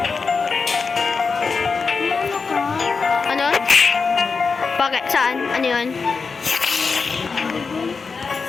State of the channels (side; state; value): right; quieter; 4.9 dB